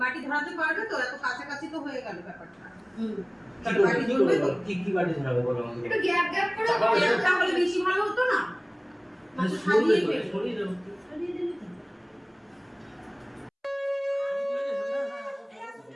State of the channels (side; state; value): both; identical; correlation 1.00